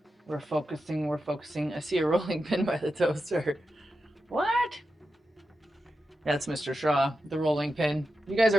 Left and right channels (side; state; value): both; normal; correlation 0.90